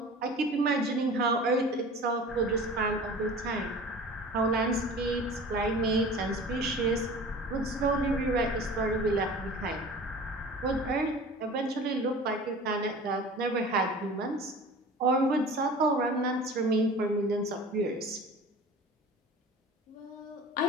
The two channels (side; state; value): both; normal; correlation 0.40